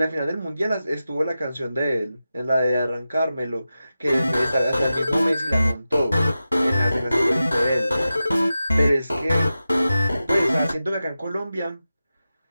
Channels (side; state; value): both; inverted; correlation -0.93